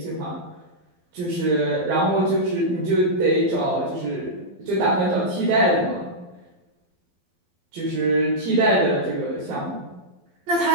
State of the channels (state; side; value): late; left; 12 ms